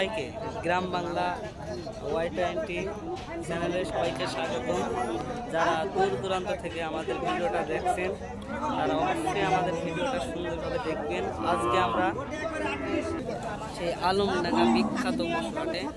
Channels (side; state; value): both; identical; correlation 1.00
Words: গ্রাম বাংলা Y20 চ্যানেলে সবাইকে স্বাগতম। যারা দূর দূরান্ত থেকে আমাদের ভিডিওটা দেখছেন তারা অবশ্যই আমাদের ভিডিওটা সুন্দরভাবে দেখবেন। আজকে আমরা সেই আলমডাঙ্গা বিখ্যাত পশু হাটে